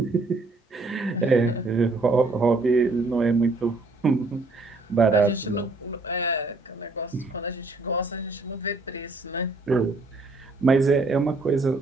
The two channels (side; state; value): left; quieter; 3.3 dB